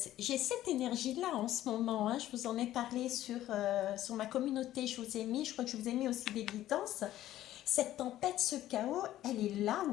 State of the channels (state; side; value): quieter; right; 13.7 dB